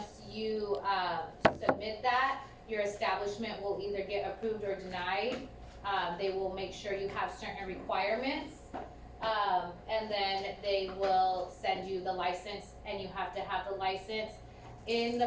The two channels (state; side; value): identical; both; correlation 1.00